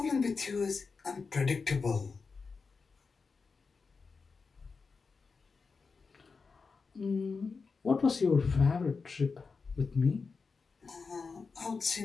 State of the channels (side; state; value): right; quieter; 4.7 dB